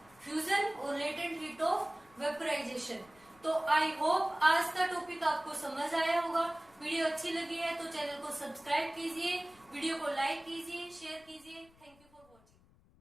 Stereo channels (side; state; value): left; noise; rumble, 29 dB below the sound